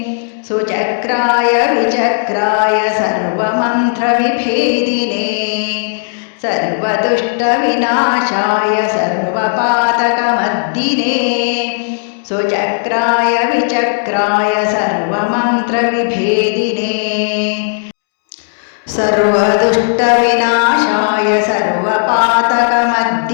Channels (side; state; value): right; silent; digital silence